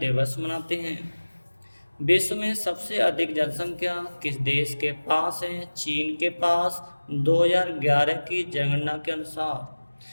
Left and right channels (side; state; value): both; inverted; correlation -1.00